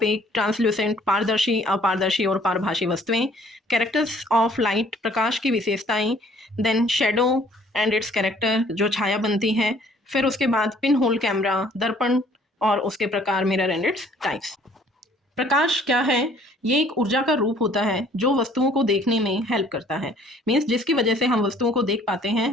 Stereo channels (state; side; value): normal; both; correlation 0.58